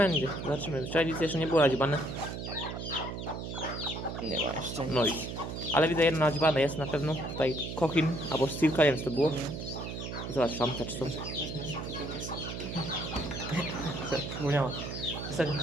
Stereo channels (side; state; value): right; noise; hum, 6 dB below the sound